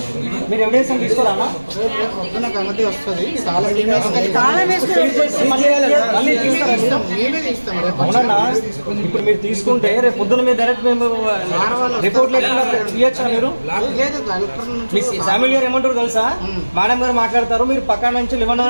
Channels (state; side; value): inverted; both; correlation -1.00